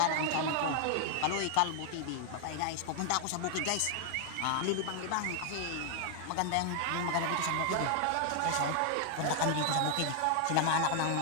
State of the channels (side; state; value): both; different; correlation 0.00